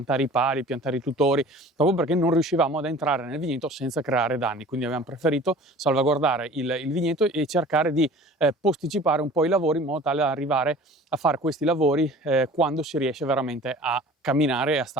i pali, piantare i tutori, proprio perché non riuscivamo ad entrare nel vigneto senza creare danni. Quindi abbiamo preferito salvaguardare il vigneto e cercare di posticipare un po' i lavori in modo tale da arrivare a fare questi lavori quando si riesce veramente a camminare e a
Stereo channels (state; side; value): normal; both; correlation 0.44